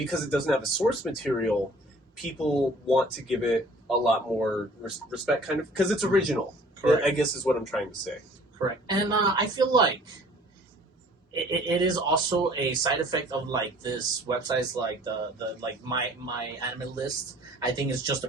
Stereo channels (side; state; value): both; normal; correlation 0.52